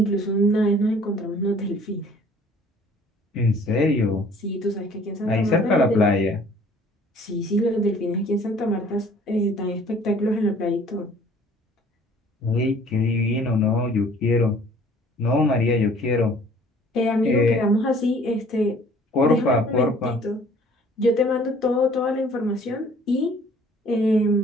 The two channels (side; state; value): both; normal; correlation 0.54